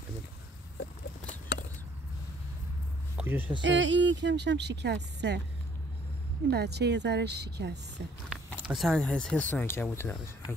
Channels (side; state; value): both; normal; correlation 0.62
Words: کجاش حس؟ این کمشم شکسته. این بچه یه ذره شکسته. اصلا حس عنکبوتو نداره.